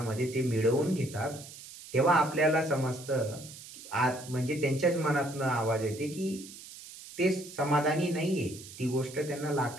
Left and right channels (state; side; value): noise; right; hiss, 15 dB below the sound